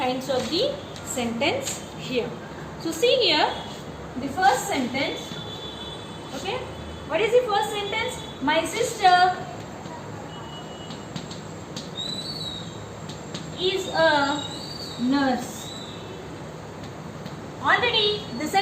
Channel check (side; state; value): both; identical; correlation 1.00